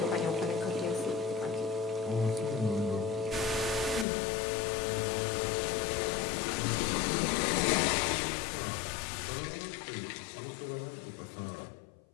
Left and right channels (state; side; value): drops out; right; at 4.0 s